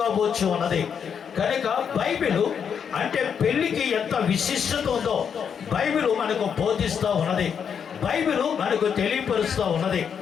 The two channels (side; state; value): right; quieter; 7.3 dB